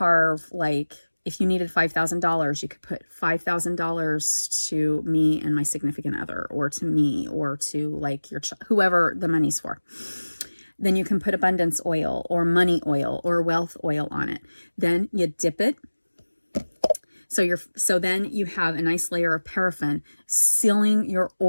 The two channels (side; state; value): both; inverted; correlation -1.00